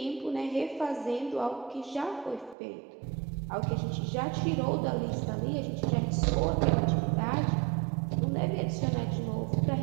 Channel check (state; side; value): drops out; left; at 2.6 s